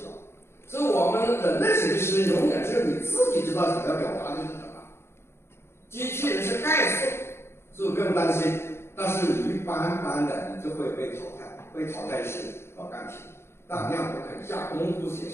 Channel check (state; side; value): late; right; 0.12 ms